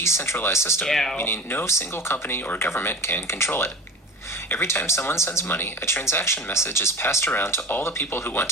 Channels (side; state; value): both; normal; correlation 0.34